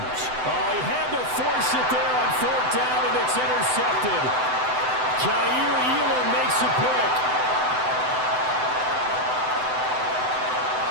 Oh, he had to force it there on 4th down, and it's intercepted. Jair Elam makes it quick.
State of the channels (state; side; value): late; left; 7.9 ms